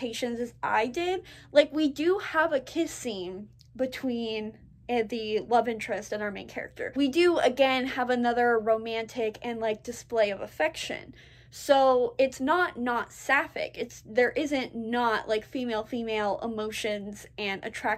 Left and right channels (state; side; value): identical; both; correlation 1.00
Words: as I did. Like, we do have a kiss scene between the love interest and our main character. We do, again, have another romantic and, like, display of affection. So it's not sapphic. There isn't not like female emotions and